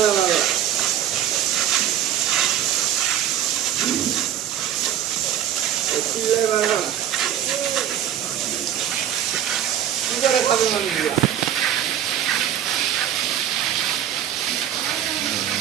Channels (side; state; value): left; quieter; 10.3 dB